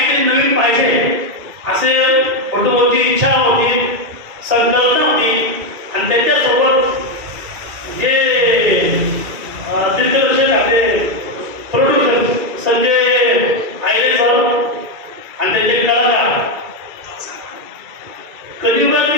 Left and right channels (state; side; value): late; left; 2.3 ms